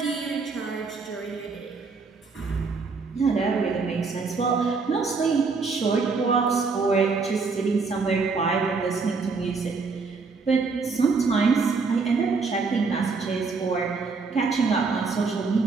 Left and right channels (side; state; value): left; quieter; 4.5 dB